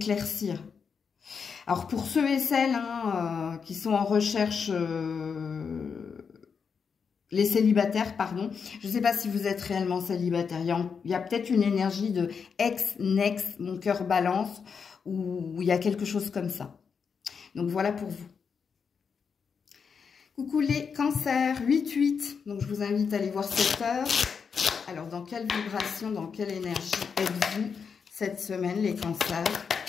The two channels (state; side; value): quieter; right; 6.1 dB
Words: Alors pour ceux et celles hein, qui sont en recherche... les célibataires, pardon. Je ne sais pas si vous êtes réellement célibataire. Il y a peut-être une énergie de ex, mon cœur balance, ou il y a quelque chose comme ça. Donc voilà pour vous. Coucou les cancers, 8-8. Donc je vous invite à aller voir cette heure. Alors dans quelle vibration, dans quelle énergie êtes-vous cette semaine les cancers?